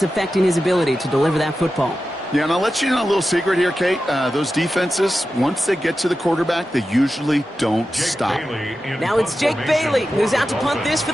affecting his ability to deliver that football. Yeah, and I'll let you know a little secret here, Kate. Those defenses, once they get to the quarterback, they usually don't stop. Now it's Jake Bailey who's out to punt this for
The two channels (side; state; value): both; normal; correlation 0.92